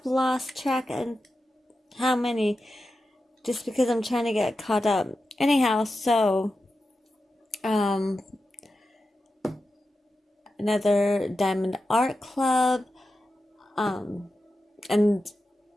lost track of how many, just because I'm trying to get caught up. Anyhow, so, another Diamond Art Club, and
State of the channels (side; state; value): both; normal; correlation 0.91